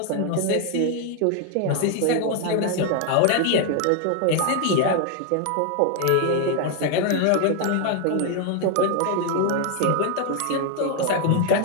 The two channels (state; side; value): different; both; correlation 0.00